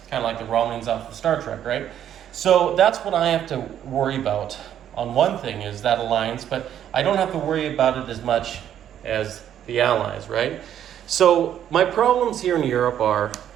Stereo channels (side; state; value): left; quieter; 10.3 dB